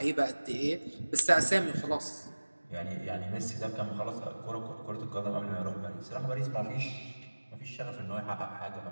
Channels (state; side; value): inverted; both; correlation -1.00